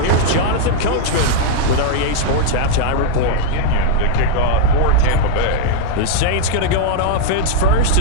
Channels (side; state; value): both; different; correlation -0.01